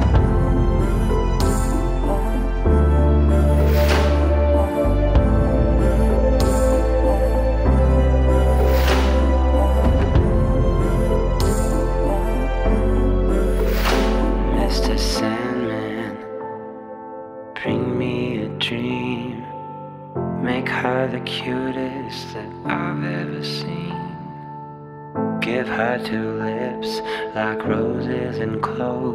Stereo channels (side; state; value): both; identical; correlation 1.00